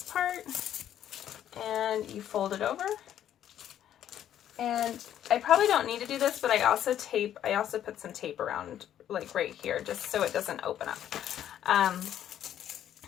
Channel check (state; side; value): quieter; right; 10.8 dB